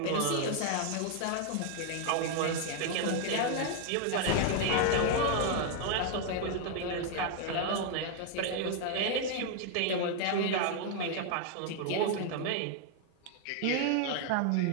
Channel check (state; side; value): different; both; correlation 0.00